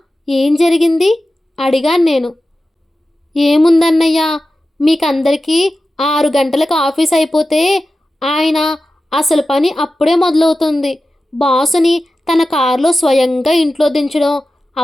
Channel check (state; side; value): normal; both; correlation 0.94